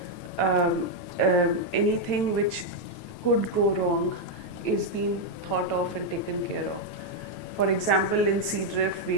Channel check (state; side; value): late; right; 9.1 ms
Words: anything which could go wrong is being thought of and taken care of. For example, in Seadrift, we